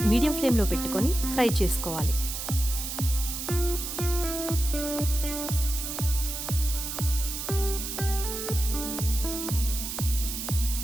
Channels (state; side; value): noise; right; hiss, 5 dB below the sound